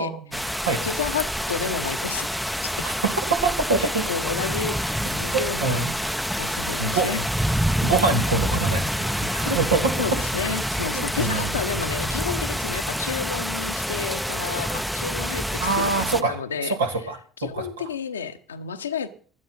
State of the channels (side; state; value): both; normal; correlation 0.36